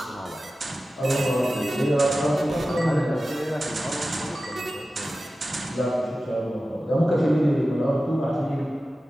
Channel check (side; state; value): both; normal; correlation 0.95